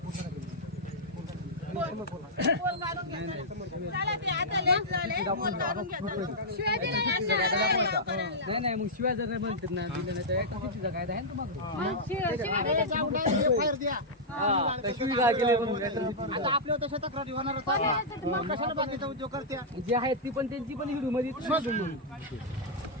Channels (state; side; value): normal; both; correlation -0.09